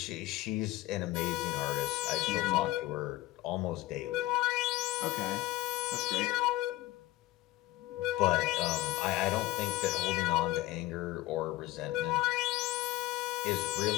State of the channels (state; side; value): quieter; right; 17.3 dB